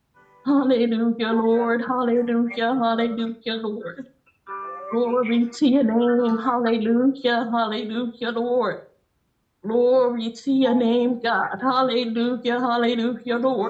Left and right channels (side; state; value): both; identical; correlation 1.00